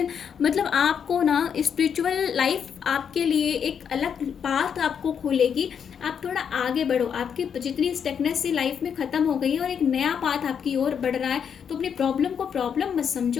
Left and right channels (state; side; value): quieter; right; 7.5 dB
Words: मतलब आपको ना स्पिरिचुअल लाइफ आपके लिए एक अलग पाथ आपको खोलेगी। आप थोड़ा आगे बढ़ो, आपकी जितनी स्टेकनेस सी लाइफ में खत्म हो गई है और एक नया पाथ आपकी ओर बढ़ रहा है। तो अपनी प्रॉब्लम को प्रॉब्लम मत